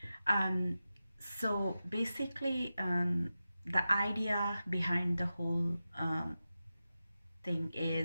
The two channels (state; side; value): inverted; both; correlation -0.93